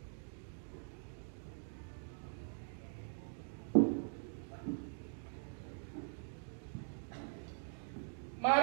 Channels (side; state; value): left; silent; digital silence